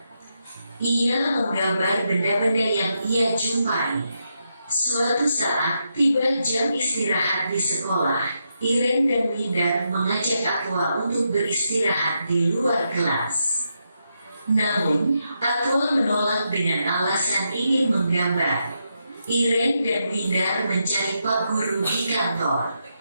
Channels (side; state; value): both; inverted; correlation -0.83